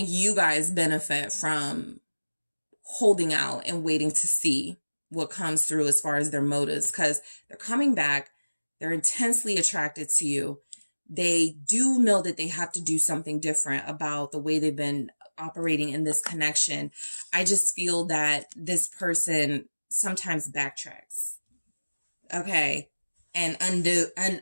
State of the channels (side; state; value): both; inverted; correlation -1.00